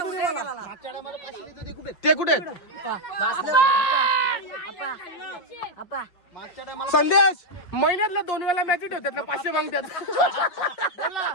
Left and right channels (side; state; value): right; late; 5.8 ms